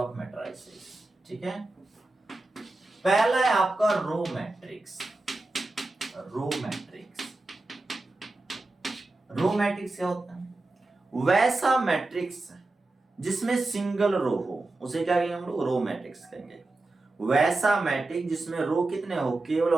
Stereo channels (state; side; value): quieter; left; 3.0 dB